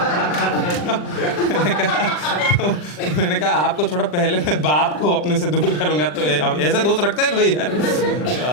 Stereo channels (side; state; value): right; late; 40 ms